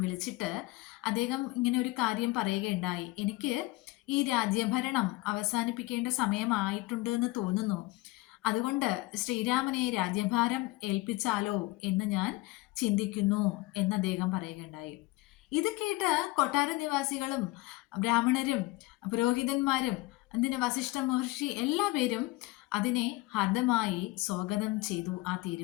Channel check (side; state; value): right; quieter; 20.8 dB